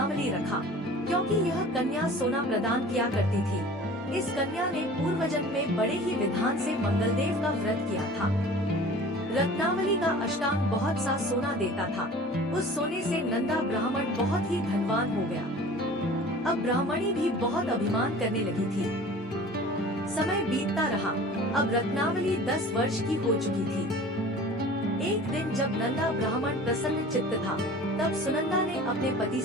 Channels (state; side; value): normal; both; correlation 0.43